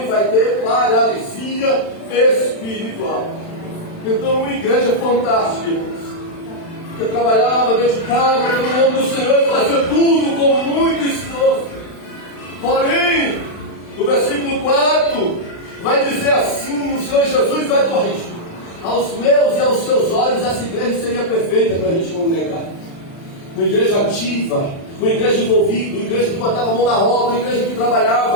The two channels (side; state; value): right; late; 36 ms